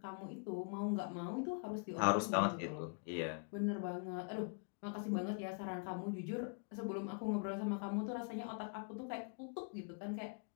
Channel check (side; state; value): right; quieter; 39.6 dB